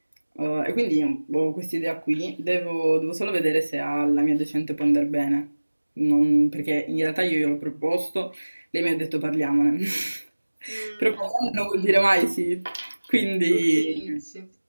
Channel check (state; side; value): inverted; both; correlation -1.00